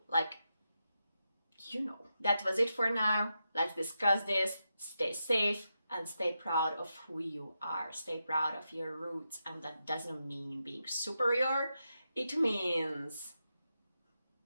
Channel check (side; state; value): both; inverted; correlation -0.87